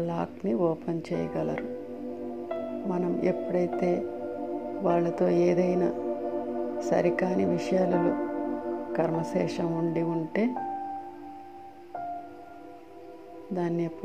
లాక్ని ఓపెన్ చేయగలరు. మనం ఎప్పుడైతే వాళ్ళతో ఏదైనా సరికాని విషయాలలో కర్మశేషం ఉంటే దాన్ని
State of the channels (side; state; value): both; identical; correlation 1.00